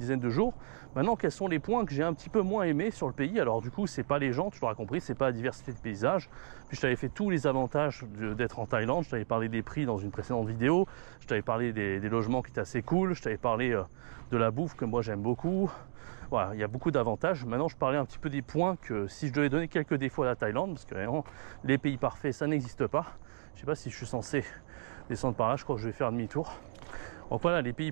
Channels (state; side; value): silent; left; digital silence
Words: de jours. Maintenant, quels sont les points que j'ai un petit peu moins aimés sur le pays? Alors du coup, c'est pas les gens, tu l'auras compris, c'est pas la diversité de paysages. Puis je t'avais fait tous les avantages d'être en Thaïlande. Je t'avais parlé des prix dans une précédente vidéo. Je t'avais parlé des logements qui étaient assez cool. Je t'avais parlé de la bouffe que moi j'aime beaucoup. Voilà, il y a beaucoup d'avantages. Maintenant, je parlais un petit peu des points que si je devais donner quelques défauts à la Thaïlande, parce que vraiment, les pays parfaits, ça n'existe pas. Je sais pas si je suis censé descendre par là, je crois que je vais faire demi-tour. Donc voilà, les pays